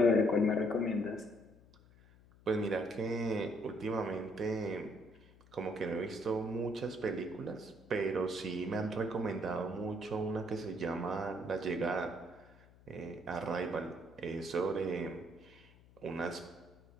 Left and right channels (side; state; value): left; noise; hum, 25 dB below the sound